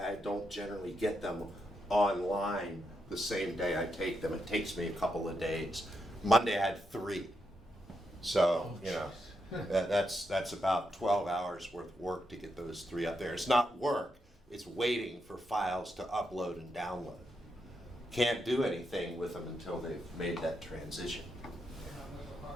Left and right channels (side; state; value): both; normal; correlation 0.83